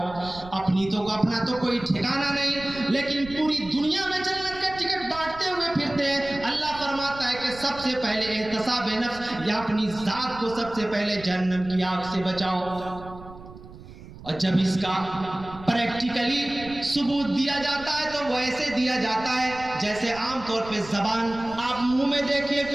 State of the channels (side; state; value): right; noise; rumble, 17 dB below the sound